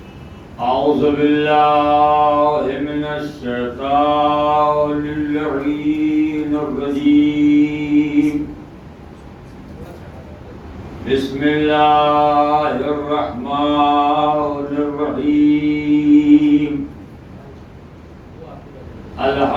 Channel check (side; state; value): both; identical; correlation 1.00